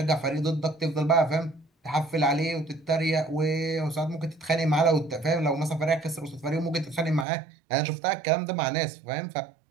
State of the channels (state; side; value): drops out; left; at 7.2 s